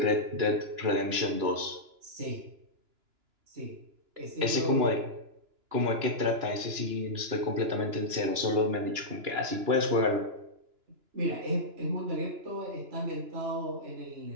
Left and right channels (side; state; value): left; late; 2.9 ms